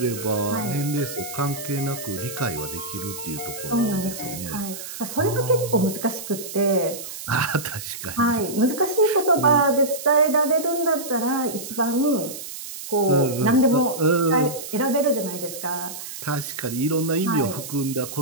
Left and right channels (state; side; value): noise; right; hiss, 10 dB below the sound